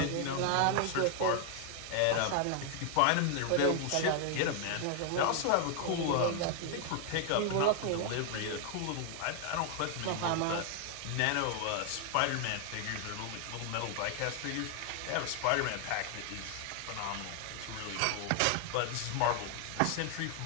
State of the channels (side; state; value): both; different; correlation 0.00